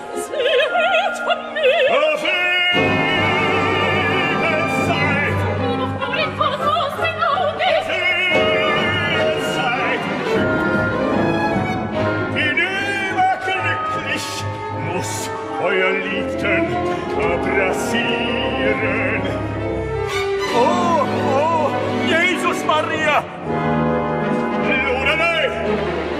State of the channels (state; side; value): identical; both; correlation 1.00